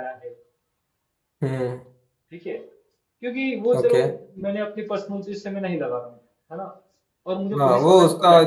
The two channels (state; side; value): identical; both; correlation 1.00